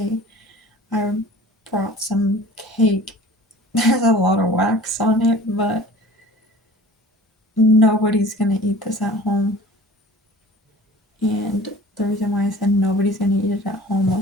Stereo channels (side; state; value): both; normal; correlation 0.44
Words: I brought some cake. There's a lot of wax on it, but nobody's gonna eat this at home." And the reason why I said nobody's gonna eat it at home